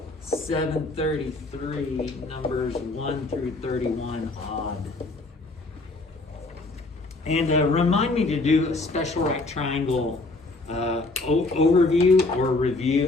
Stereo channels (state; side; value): quieter; right; 3.1 dB